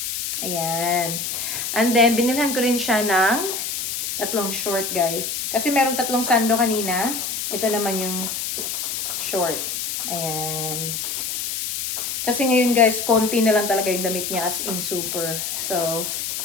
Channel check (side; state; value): left; noise; hiss, 3 dB below the sound